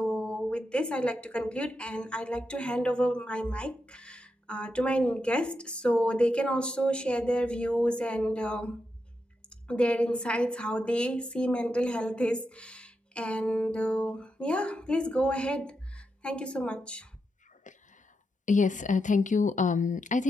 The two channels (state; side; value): normal; both; correlation 0.86